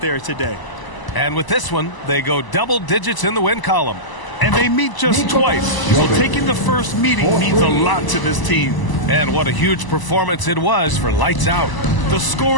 today. And with this one, they go double digits in the win column. And they meet just twice, so taking the first meeting means a lot to this team. And what a huge performance it was for Lights Out. The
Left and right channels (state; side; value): late; right; 1.0 ms